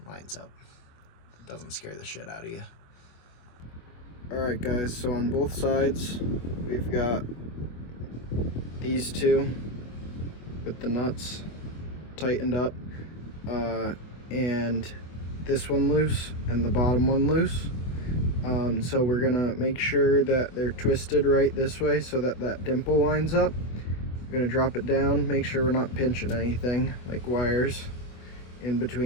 lines up. It doesn't scare the shit out of you. Alright guys, so on both sides, we've got these 2 with the nuts tightened up, and this one loose, and the bottom one loose. So we're gonna make sure that they're twisted right this way so that that dimple lines up. We're gonna drop it down, make sure we're not pinching anything like wires in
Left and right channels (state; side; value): late; right; 25 ms